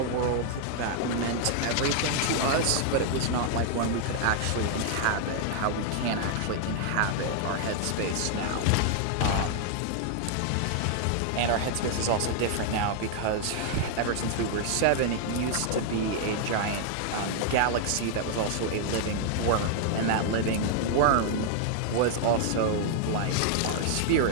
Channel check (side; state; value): both; different; correlation 0.00